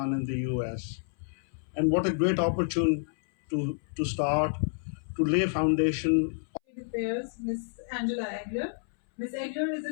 and the US. And what a great opportunity to start, to lay foundation. Affairs, Ms. Angela Egler. Ms. Egler is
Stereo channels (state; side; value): silent; right; 58 dB below the other